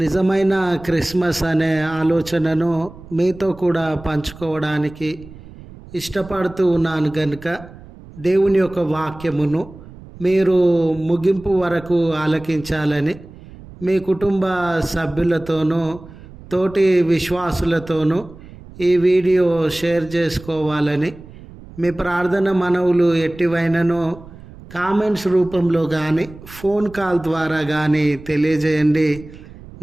క్రిస్మస్ అనే ఆలోచనను మీతో కూడా పంచుకోవడానికి ఇష్టపడుతూ ఉన్నాను కనుక దేవుని యొక్క వాక్యమును మీరు ముగింపు వరకు ఆలకించాలని మీ కుటుంబ సభ్యులతోనూ తోటి విశ్వాసులతోనూ ఈ వీడియో షేర్ చేసుకోవాలని మీ ప్రార్థన మనవులు ఎట్టివైననో కామెంట్స్ రూపంలో కానీ ఫోన్ కాల్ ద్వారా కానీ తెలియజేయండి.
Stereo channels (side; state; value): right; noise; rumble, 18 dB below the sound